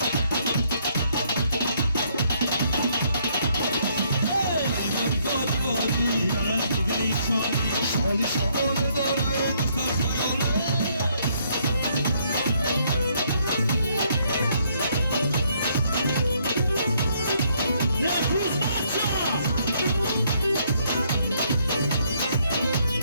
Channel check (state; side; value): inverted; both; correlation -0.69